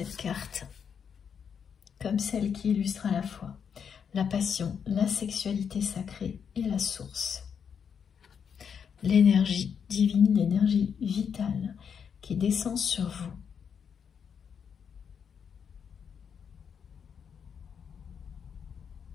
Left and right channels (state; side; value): quieter; right; 7.2 dB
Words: carte comme celle qui illustre à la fois la passion, la sexualité sacrée et la source. L'énergie divine, l'énergie vitale qui descend sur vous.